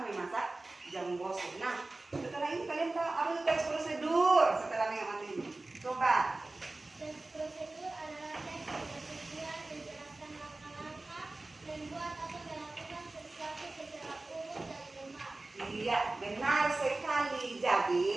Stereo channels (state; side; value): quieter; left; 3.0 dB